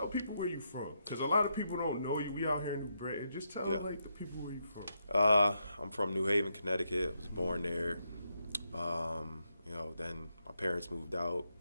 people where you from. Because a lot of people don't know you. We out here in New Britain. Just tell, the people where you from. I'm from New Haven, Connecticut. I was born there. Then my parents moved out,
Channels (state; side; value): inverted; both; correlation -0.81